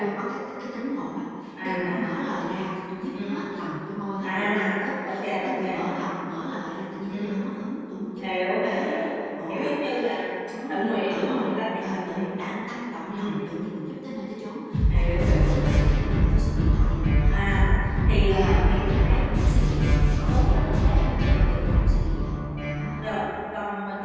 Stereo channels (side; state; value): both; identical; correlation 1.00